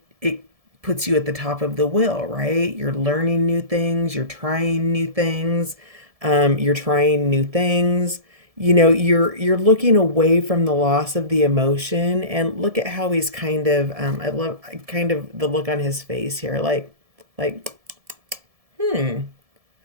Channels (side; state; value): left; late; 1.7 ms